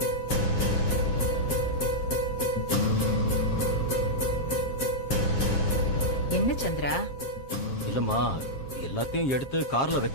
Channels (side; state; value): right; late; 7.4 ms